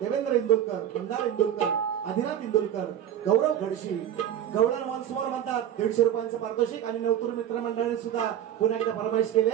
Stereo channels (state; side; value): quieter; left; 10.4 dB